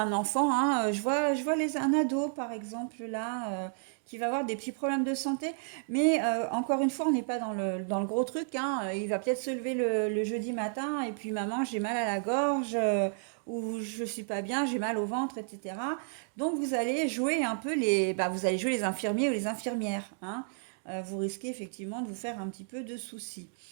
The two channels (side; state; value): left; silent; digital silence